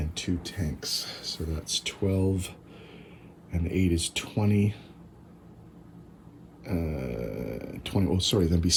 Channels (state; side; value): identical; both; correlation 1.00